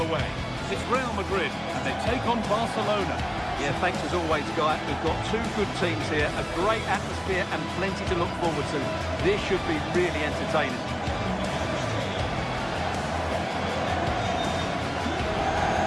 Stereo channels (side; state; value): both; identical; correlation 1.00